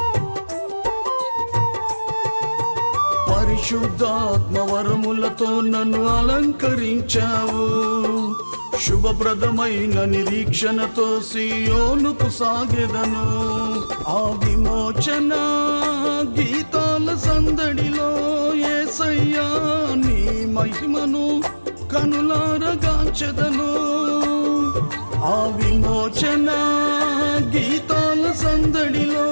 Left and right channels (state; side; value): inverted; both; correlation -1.00